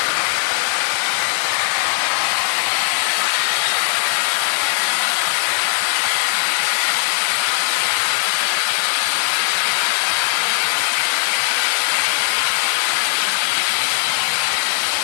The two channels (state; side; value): silent; right; digital silence